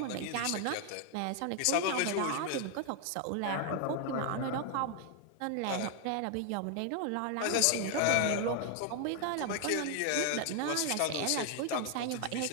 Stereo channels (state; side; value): different; both; correlation 0.00